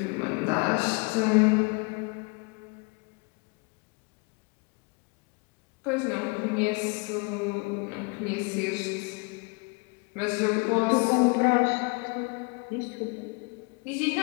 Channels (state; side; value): quieter; right; 31.4 dB